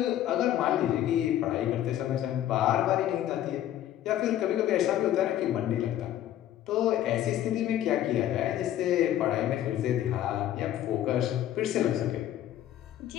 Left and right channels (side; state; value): right; quieter; 12.2 dB